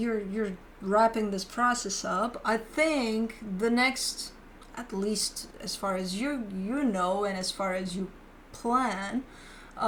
wrapping this process up, I think the next, at least as far as you know and as far as you plan,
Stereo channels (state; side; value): identical; both; correlation 1.00